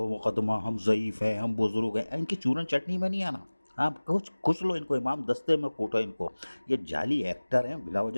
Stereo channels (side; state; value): both; inverted; correlation -1.00